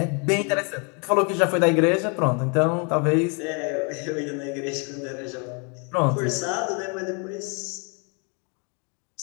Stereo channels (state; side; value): quieter; right; 34.9 dB